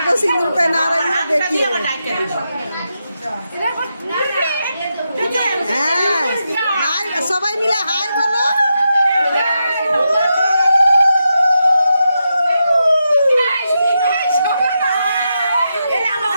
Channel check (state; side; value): inverted; both; correlation -0.86